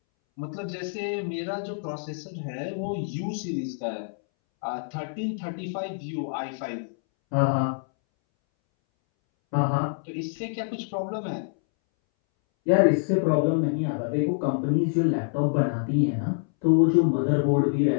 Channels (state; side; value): silent; right; 61 dB below the other